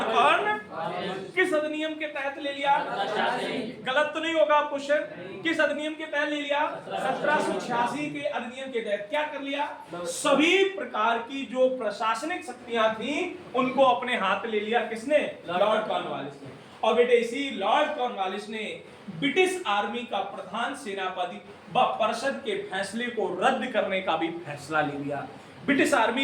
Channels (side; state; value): both; identical; correlation 1.00